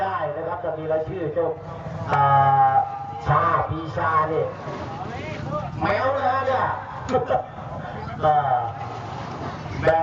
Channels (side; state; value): both; identical; correlation 1.00